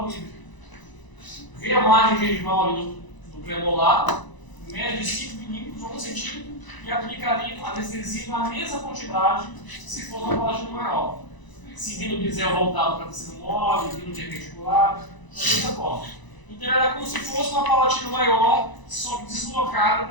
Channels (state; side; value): late; right; 1.0 ms